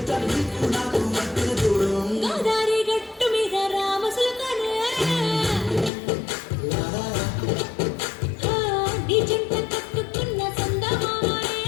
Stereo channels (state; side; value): drops out; right; at 5.9 s